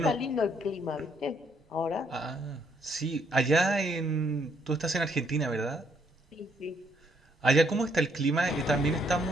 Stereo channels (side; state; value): both; normal; correlation 0.70